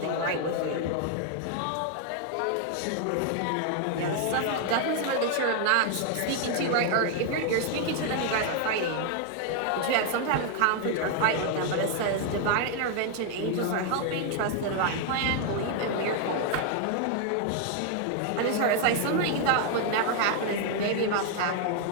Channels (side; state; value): both; different; correlation 0.00